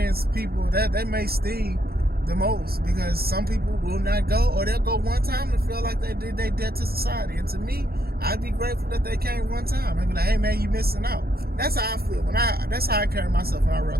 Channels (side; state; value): left; late; 0.44 ms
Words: people that may sting the most, because some people will not go, or they'll go one time and feel like they did their debt to society. And to me, I'd be grateful that they came one time. I'd be like, hey man, you missing out. That's how I feel that's how I carry myself when I